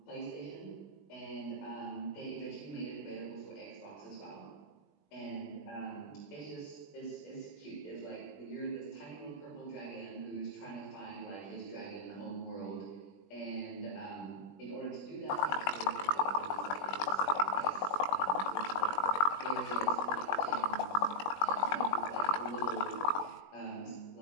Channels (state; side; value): late; right; 20 ms